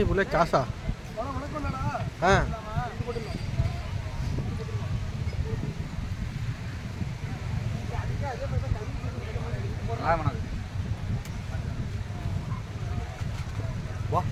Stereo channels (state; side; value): identical; both; correlation 1.00